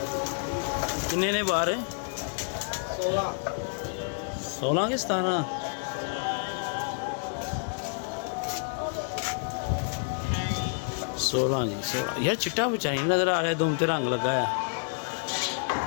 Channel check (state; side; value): silent; right; digital silence